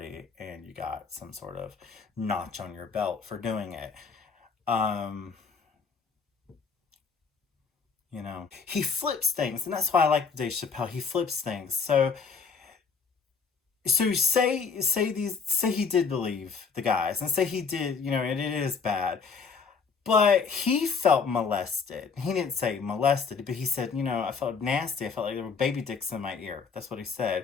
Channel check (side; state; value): right; quieter; 5.5 dB